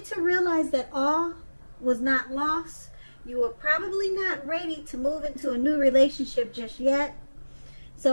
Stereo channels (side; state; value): both; inverted; correlation -1.00